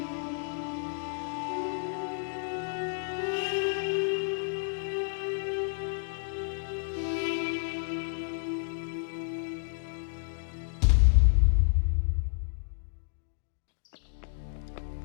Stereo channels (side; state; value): right; silent; 57 dB below the other